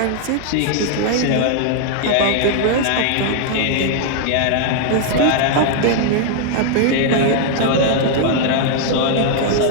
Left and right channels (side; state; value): both; different; correlation 0.00